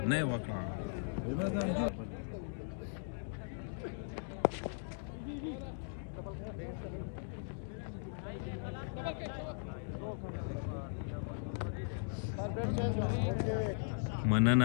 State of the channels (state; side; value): silent; right; digital silence